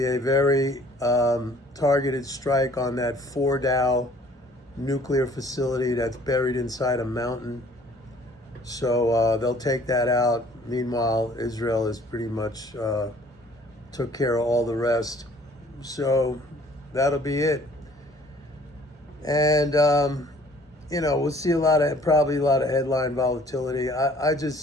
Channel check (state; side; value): normal; both; correlation 0.56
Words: a very targeted strike on that Fordow nuclear facility that's buried inside a mountain. So they'll take that out. Meanwhile, Israel is pretty much took care of all the rest. So that'll be it. And we'll see probably a lot of headline volatility. I